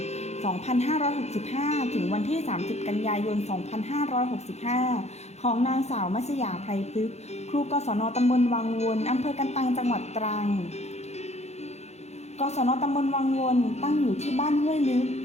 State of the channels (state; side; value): late; right; 0.32 ms